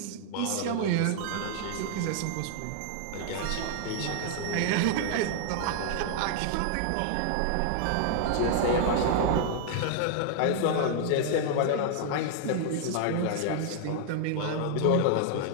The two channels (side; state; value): both; different; correlation 0.00